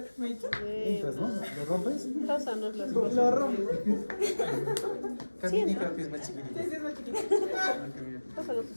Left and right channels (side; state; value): both; inverted; correlation -1.00